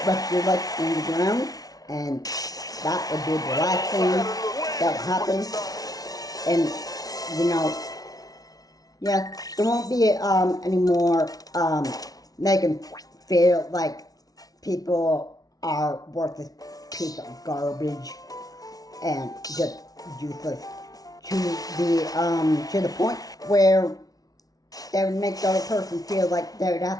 rest of your life in the ground, and that would be the last thing that will happen. And, you know, yeah, there won't be any more making feel like people are worthless piece of garbage and just useless to the point where they would make the other person feel like they would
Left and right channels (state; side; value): late; right; 0.18 ms